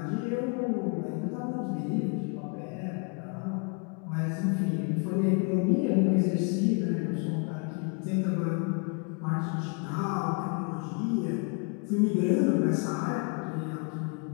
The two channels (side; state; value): right; quieter; 35.6 dB